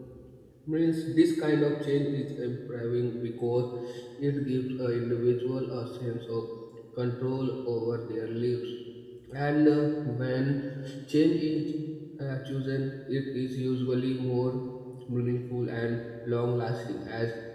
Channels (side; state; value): both; identical; correlation 1.00